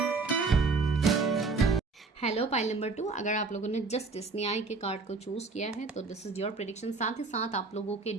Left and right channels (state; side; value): quieter; left; 4.1 dB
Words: Hello pile number 2, अगर आप लोगों ने जस्ट इस न्याय के कार्ड को चूज किया है तो दिस इज योर प्रेडिक्शन। साथ ही साथ आप लोगों के